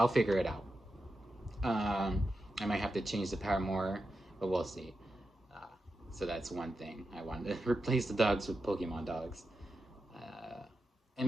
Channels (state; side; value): normal; both; correlation 0.89